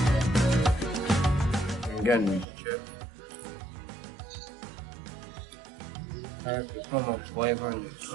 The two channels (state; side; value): drops out; left; at 2.5 s